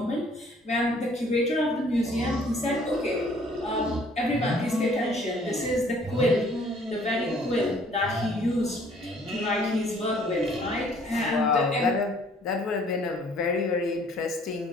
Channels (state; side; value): normal; both; correlation 0.59